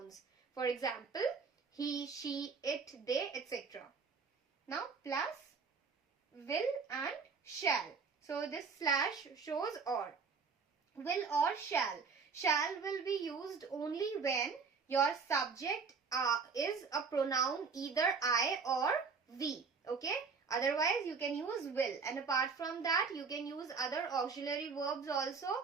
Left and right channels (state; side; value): quieter; left; 5.2 dB